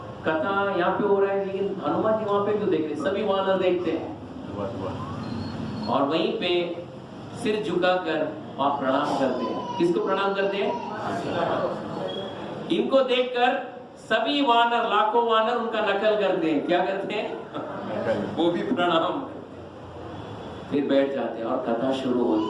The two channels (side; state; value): both; identical; correlation 1.00